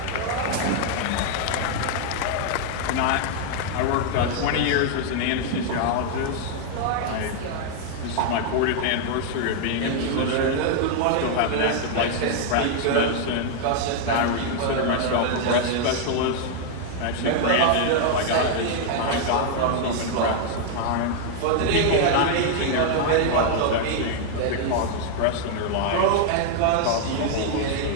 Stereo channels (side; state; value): both; different; correlation 0.00